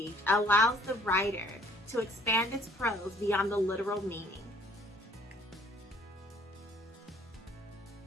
allows the writer to expand its prose beyond the literal meaning.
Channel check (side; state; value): both; normal; correlation 0.58